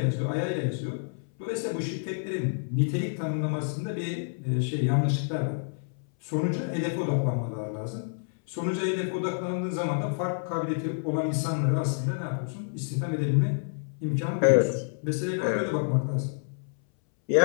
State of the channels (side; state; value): right; silent; 59 dB below the other